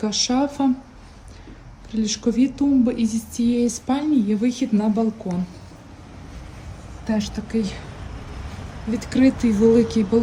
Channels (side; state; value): both; identical; correlation 1.00